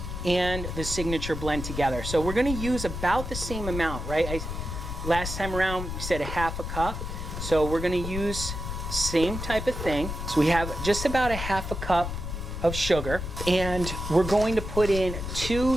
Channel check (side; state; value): left; noise; rumble, 6 dB below the sound